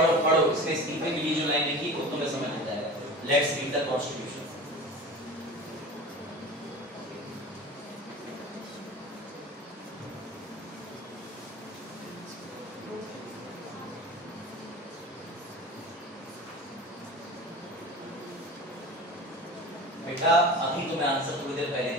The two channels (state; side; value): normal; both; correlation 0.35